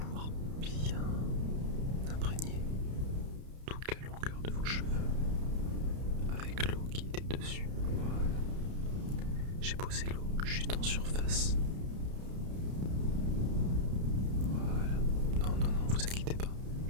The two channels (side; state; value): left; late; 31 ms